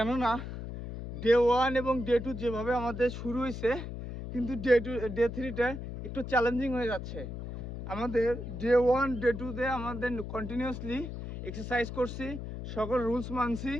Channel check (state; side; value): noise; left; hum, 8 dB below the sound